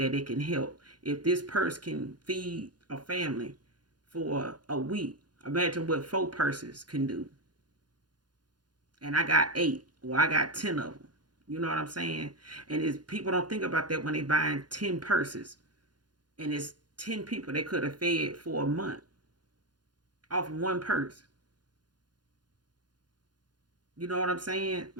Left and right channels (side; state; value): left; late; 0.70 ms